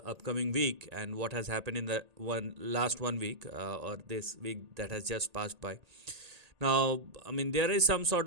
upcoming week and what has happened in the last 1 week or this week that has just passed by. Now, I mean, there is some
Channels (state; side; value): late; left; 1.8 ms